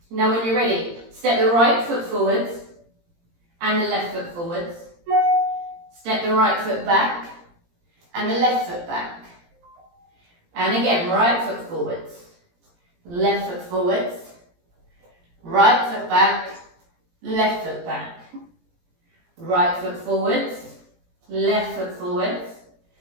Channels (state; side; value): late; left; 17 ms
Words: Now when you're ready, step the right foot forwards and the left foot forwards. Step the right foot back and the left foot back. And again, right foot forwards, left foot forwards, right foot back, left foot back. Right foot forwards, left foot forwards,